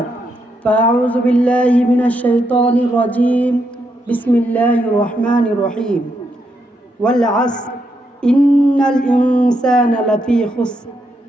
فأعوذ بالله من الشيطان الرجيم. بسم الله الرحمن الرحيم. والعصر إن الإنسان لفي خسر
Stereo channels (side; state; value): both; normal; correlation 0.80